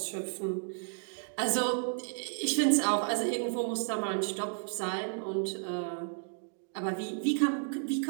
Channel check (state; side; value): silent; left; digital silence